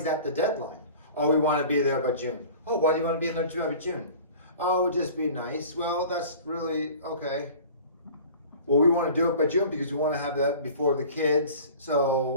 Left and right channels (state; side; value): inverted; both; correlation -0.43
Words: that the deadline? Oh, we want to be there by June. Oh, why do you want to be there by June? Oh, it would just be nice. Well, that's really okay. Well, we want to do it by June because we want to have that before the kids